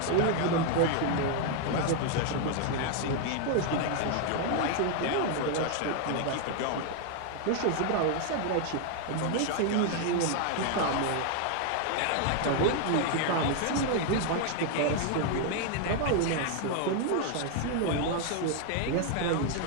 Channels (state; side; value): different; both; correlation 0.00